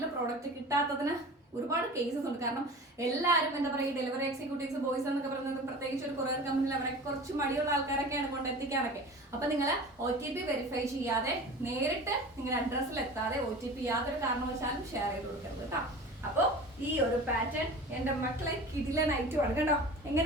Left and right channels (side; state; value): both; normal; correlation 0.37